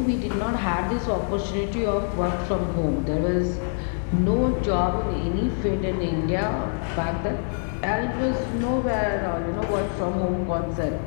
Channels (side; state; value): right; silent; digital silence